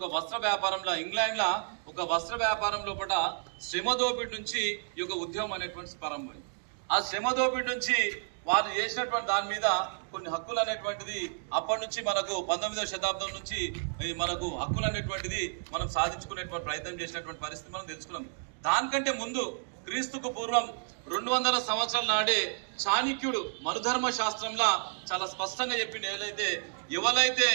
వస్త్ర వ్యాపారంలో ఇంగ్లాండ్లో ఒక వస్త్ర వ్యాపారం లోపల శ్రమ దోపిడీ నుంచి ఈ యొక్క ఉద్యమం అనేటువంటి ప్రారంభమైంది. ఆ శ్రమ దోపిడీ నుంచి వాళ్ళు చేసినటువంటి దాని మీద కొన్ని హక్కులు అనేటువంటిది అప్పటి నుంచి మనకు 19వ శతాబ్దం నుంచి మనకు హక్కులు అనేటువంటిది మనం సాధించుకునేటువంటి ప్రయత్నం చేసినటువంటి పరిస్థితి మనం తెలుసుకున్నాం. దానికంటే ముందు క్రీస్తుకు పూర్వం 200 సంవత్సరాల నాడే చాణక్యుడు మనుధర్మ శాస్త్రంలో చాలా స్పష్టంగా చెప్పింది. ఎవరైతే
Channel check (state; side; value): silent; left; digital silence